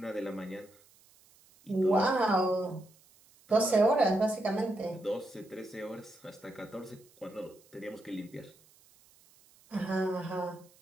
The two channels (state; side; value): noise; right; hiss, 29 dB below the sound